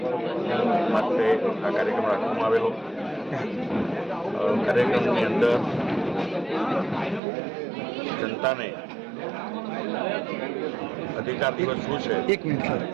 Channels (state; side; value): drops out; left; at 7.2 s